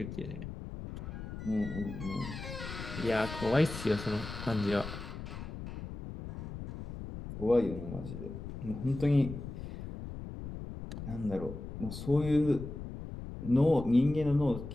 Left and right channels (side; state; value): left; noise; rumble, 9 dB below the sound